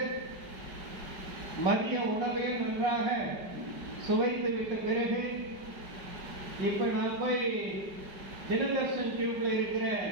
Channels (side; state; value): left; late; 5.0 ms